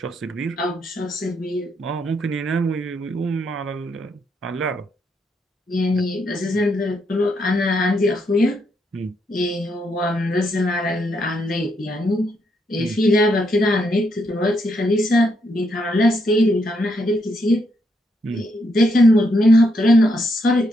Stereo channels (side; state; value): both; normal; correlation 0.77